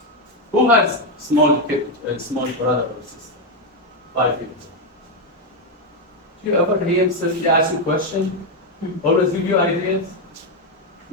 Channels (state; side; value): normal; both; correlation 0.05